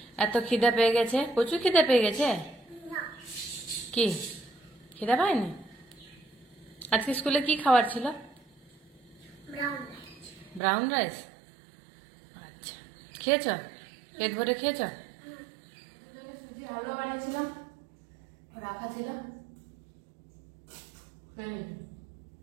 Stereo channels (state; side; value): drops out; left; at 10.6 s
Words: এত খিদে পেয়ে গেছে, প্রচুর খিদে পেয়ে গেছে। কি খিদে পায়নি? আজকে স্কুলে কি খাবার ছিল? Brown rice. আচ্ছা, খেয়েছ? পেট ভরে খেয়েছ? সুজি হালুয়া বানিয়েছিলাম, রাখা ছিল।